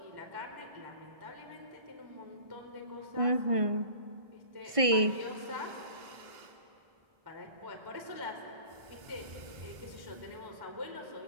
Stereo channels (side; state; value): left; late; 1.5 ms